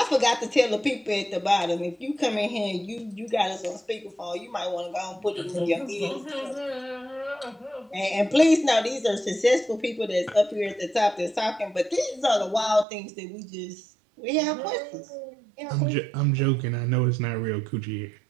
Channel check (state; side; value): drops out; left; at 12.9 s